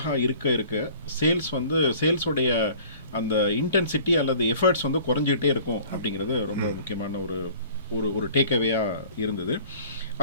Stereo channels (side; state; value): both; inverted; correlation -0.49